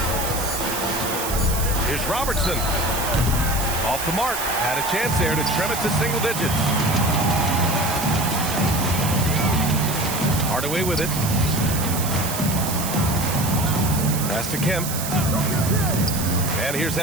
Here's Robertson. Off the mark. Had a chance there to trim it to single digits. Hardaway with it. Pass to Kemp. And here's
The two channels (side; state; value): right; noise; hiss, 5 dB below the sound